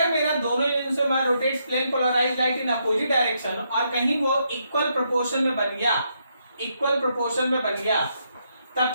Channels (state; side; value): inverted; both; correlation -0.78